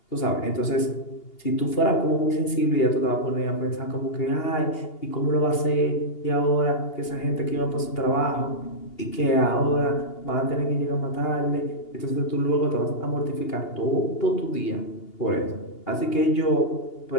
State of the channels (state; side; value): late; right; 2.8 ms